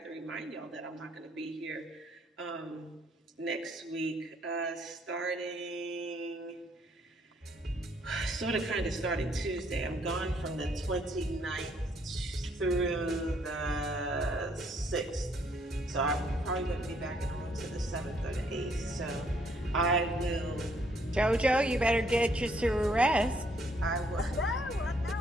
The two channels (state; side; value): normal; both; correlation 0.68